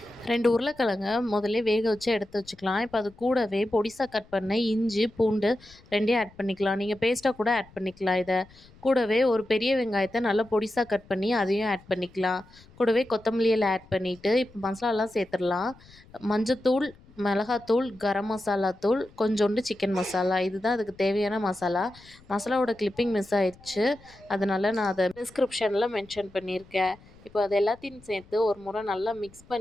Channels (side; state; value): left; noise; rumble, 25 dB below the sound